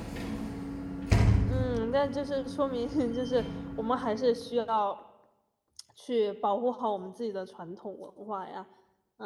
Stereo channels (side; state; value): both; identical; correlation 1.00